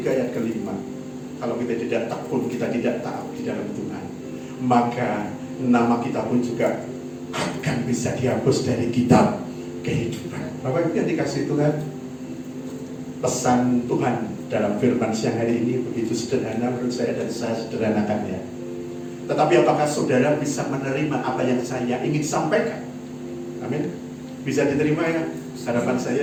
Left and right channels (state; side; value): identical; both; correlation 1.00